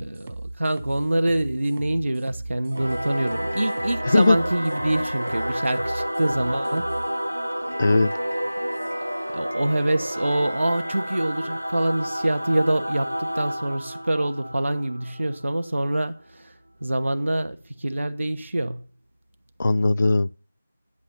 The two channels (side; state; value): both; inverted; correlation -0.97